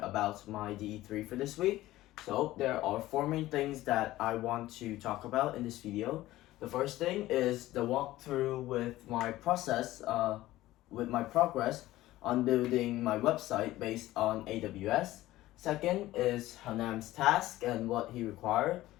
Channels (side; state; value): right; quieter; 16.2 dB